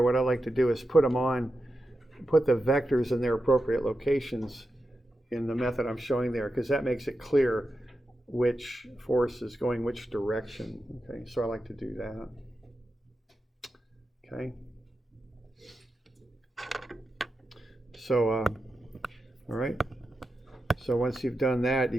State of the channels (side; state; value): both; normal; correlation 0.89